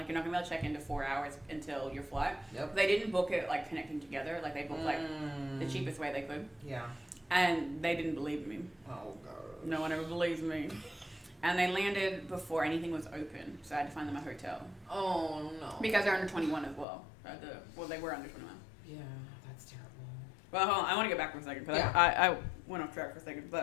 you're not gonna be able to check into 4 hours until your flight. Yep. They didn't book it like connecting together. Like they booked like the cheapest way they could. Yeah. And they didn't believe me. Oh god. No one ever believes me. And they landed before anything was open, so I had to find them a hotel. Oh no. Because they're under 21 as well. Well, they were under 21. Yeah, that's terrible. Well, hold on. I want to get back for a second because Yeah. I went off track for a second.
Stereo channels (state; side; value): drops out; right; at 16.9 s